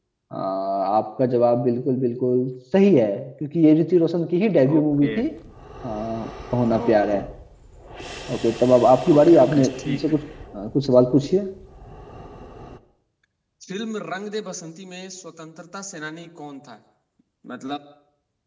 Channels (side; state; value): both; identical; correlation 1.00